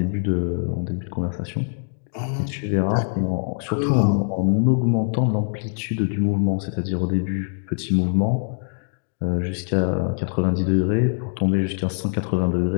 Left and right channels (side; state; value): right; silent; 61 dB below the other